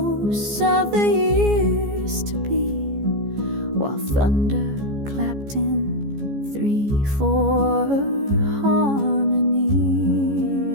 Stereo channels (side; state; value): left; late; 14 ms